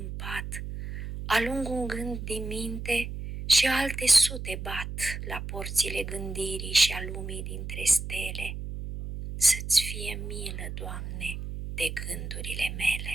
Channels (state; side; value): noise; right; hum, 7 dB below the sound